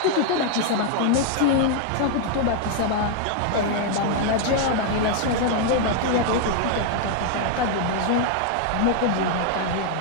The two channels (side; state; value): both; different; correlation 0.00